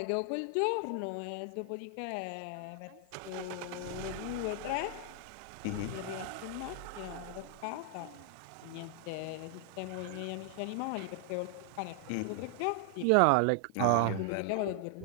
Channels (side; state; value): both; different; correlation 0.00